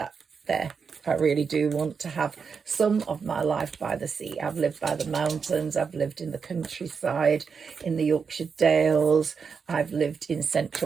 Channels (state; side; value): quieter; left; 5.8 dB